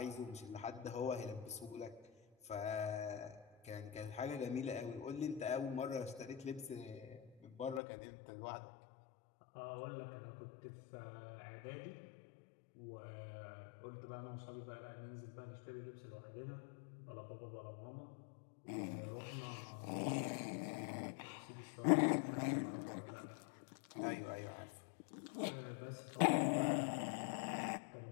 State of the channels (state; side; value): drops out; right; at 7.8 s